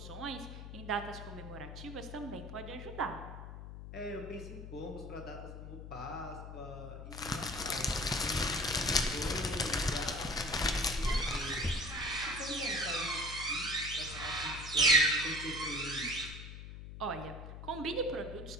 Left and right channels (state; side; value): noise; left; hum, 10 dB below the sound